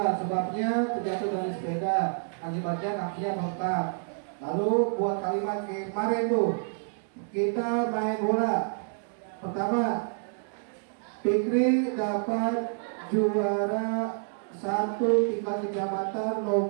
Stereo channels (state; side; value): silent; left; digital silence